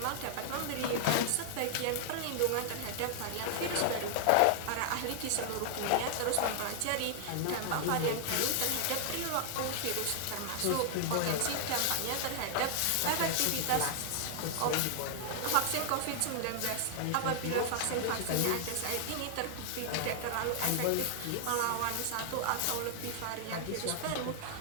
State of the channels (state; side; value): different; both; correlation 0.00